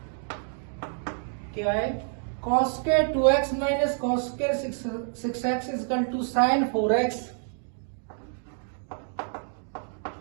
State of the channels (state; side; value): silent; left; 59 dB below the other